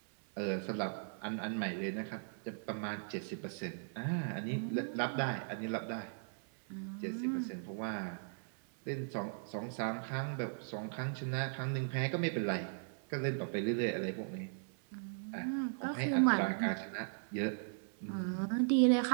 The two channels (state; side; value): silent; left; 52 dB below the other